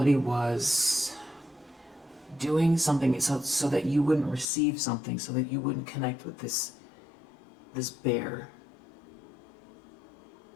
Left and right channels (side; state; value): right; drops out; at 4.5 s